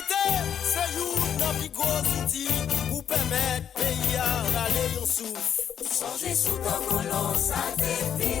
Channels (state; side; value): quieter; right; 8.8 dB